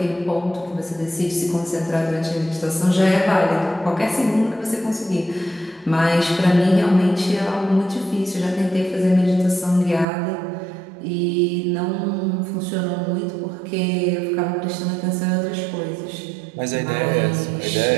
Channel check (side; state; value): left; drops out; at 10.1 s